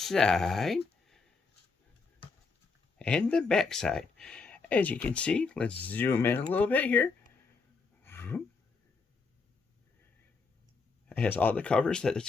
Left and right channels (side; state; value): right; quieter; 4.5 dB